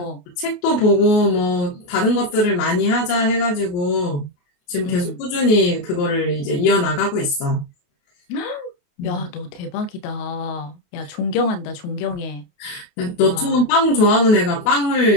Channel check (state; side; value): late; right; 28 ms